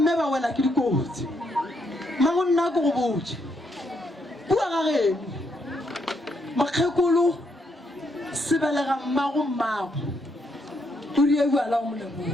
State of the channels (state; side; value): normal; both; correlation 0.76